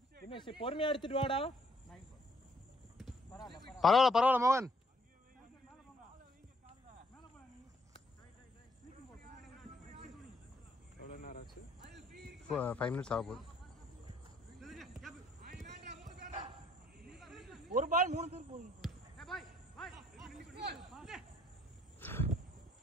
தினேஷ் பொறுமையா எடுத்துட்டு வாடா. பரவாயில்ல மோகன். எவ்வளவு நேரம் ஆச்சு? 5 minutes ஆக போகுது. ஒரு பால் 3 பேர் போகுது.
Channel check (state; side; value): normal; both; correlation 0.67